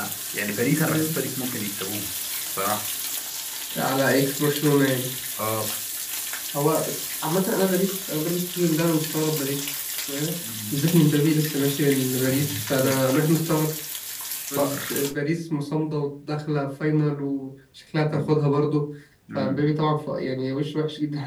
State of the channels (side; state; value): both; identical; correlation 1.00